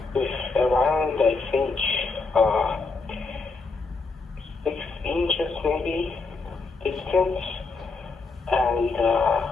with around, I think, 6 inches maybe distance. And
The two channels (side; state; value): right; quieter; 4.1 dB